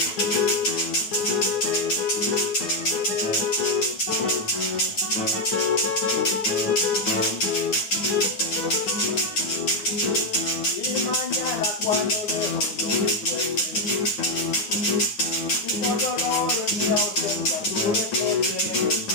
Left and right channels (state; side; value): late; right; 9.4 ms